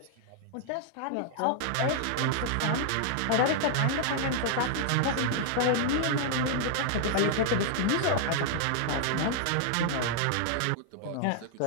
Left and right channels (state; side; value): different; both; correlation -0.01